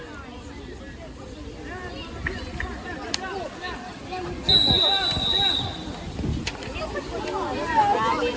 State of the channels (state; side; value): identical; both; correlation 1.00